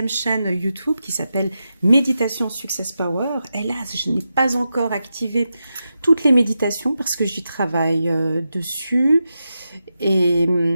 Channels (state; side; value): inverted; both; correlation -0.89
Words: chaîne YouTube qui s'appelle Méditation Success Power. Hélas, je n'ai pas encore activé toutes les méditations parce que j'y travaille dessus. Et